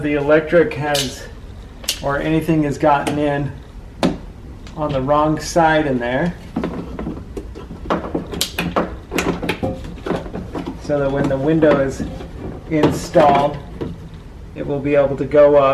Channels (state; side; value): identical; both; correlation 1.00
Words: the electric has or anything has gotten in on the wrong side in there, so that when the window is installed, it will be able to go